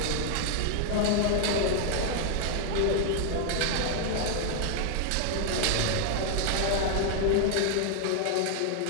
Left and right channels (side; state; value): both; different; correlation 0.00